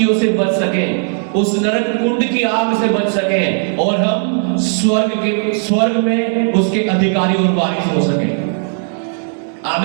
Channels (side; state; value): left; silent; 56 dB below the other